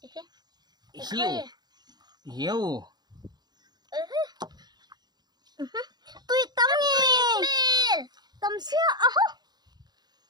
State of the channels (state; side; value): late; left; 0.20 ms